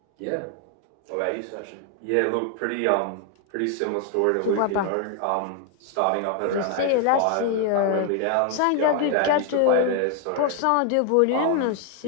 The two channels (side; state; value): both; different; correlation 0.00